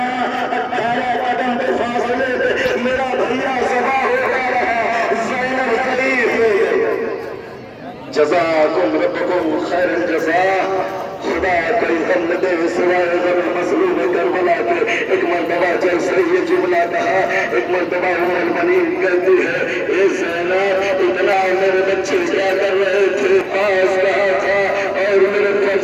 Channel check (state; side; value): identical; both; correlation 1.00